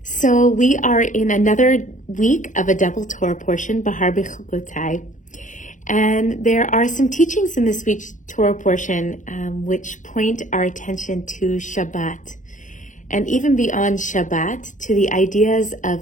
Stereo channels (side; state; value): right; late; 0.37 ms